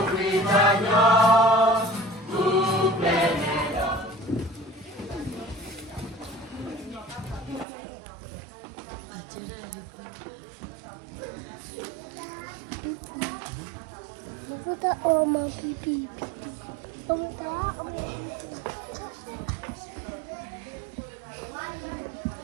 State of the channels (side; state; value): left; drops out; at 7.7 s